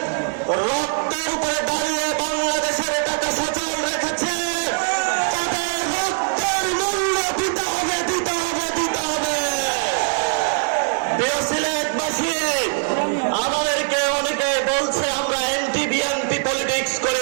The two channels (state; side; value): silent; left; 64 dB below the other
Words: রক্তের উপরে দাঁড়িয়ে বাংলাদেশের টাকা সচল রেখেছে। তাদের রক্তের মূল্য দিতে হবে, দিতে হবে, দিতে হবে। প্রিয় সিলেটবাসী, আমাদেরকে অনেকে বলছে আমরা অ্যান্টি বিএনপি পলিটিক্স